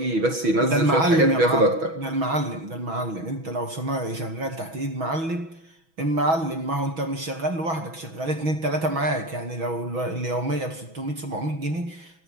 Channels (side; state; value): left; late; 6.2 ms